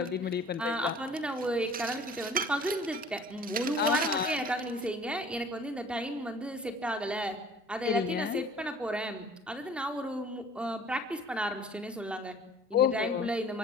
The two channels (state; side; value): normal; both; correlation 0.49